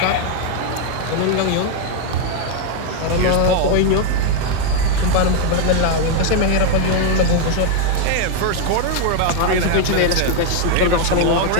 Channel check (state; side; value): different; both; correlation 0.00